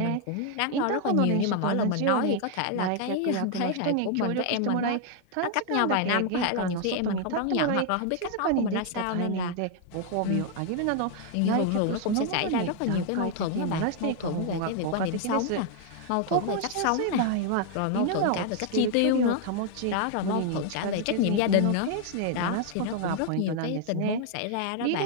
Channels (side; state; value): both; different; correlation 0.00